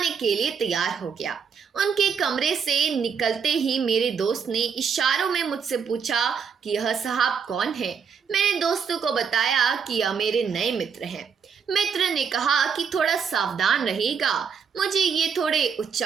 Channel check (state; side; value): quieter; left; 6.5 dB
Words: के लिए तैयार हो गया। उनके कमरे से निकलते ही मेरे दोस्त ने इशारों में मुझसे पूछा कि यह साहब कौन है। मैंने दोस्तों को बताया कि यह मेरे नए मित्र हैं। मित्र ने कहा कि थोड़ा सावधान रहिएगा, मुझे ये थोड़े